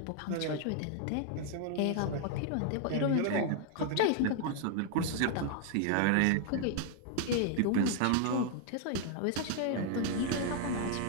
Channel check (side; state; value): both; different; correlation 0.00